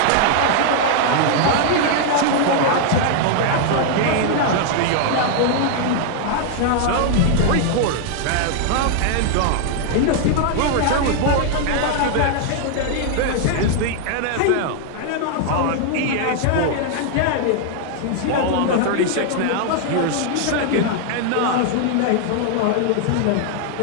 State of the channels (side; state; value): both; different; correlation 0.00